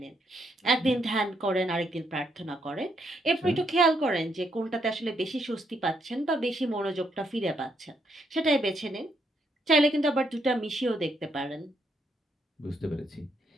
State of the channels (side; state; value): both; normal; correlation 0.75